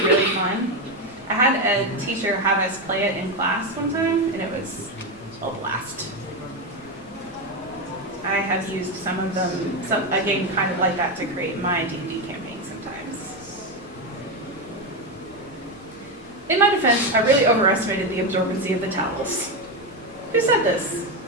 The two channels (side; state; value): both; normal; correlation 0.11